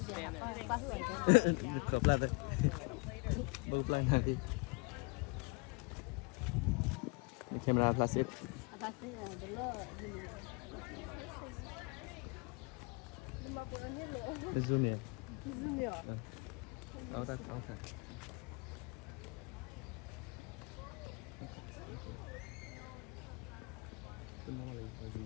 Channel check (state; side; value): quieter; right; 29.4 dB